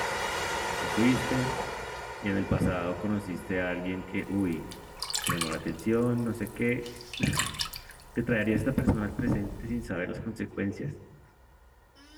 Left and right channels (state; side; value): identical; both; correlation 1.00